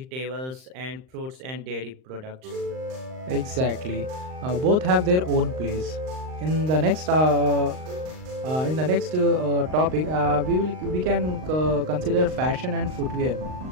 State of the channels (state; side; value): late; left; 39 ms